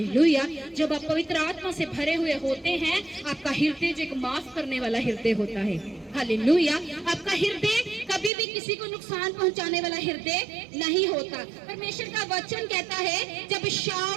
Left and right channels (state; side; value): drops out; left; at 8.3 s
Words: जब आप पवित्र आत्मा से भरे हुए होते हैं, आपका हृदय जो एक माफ करने वाला हृदय होता है। हालेलुया। आपका हृदय कभी भी किसी को नुकसान पहुंचाने वाला हृदय नहीं होता। परमेश्वर का वचन कहता है जब